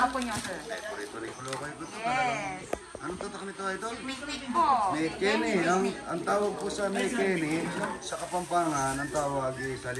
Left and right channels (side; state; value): both; identical; correlation 1.00